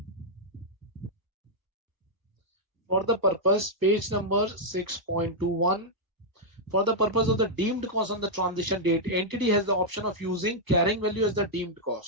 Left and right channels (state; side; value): late; left; 1.1 ms